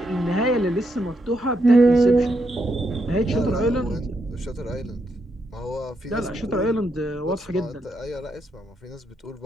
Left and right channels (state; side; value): normal; both; correlation 0.80